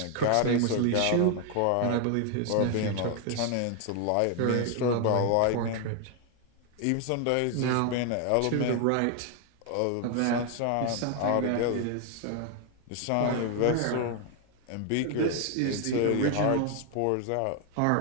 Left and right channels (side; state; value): both; different; correlation 0.00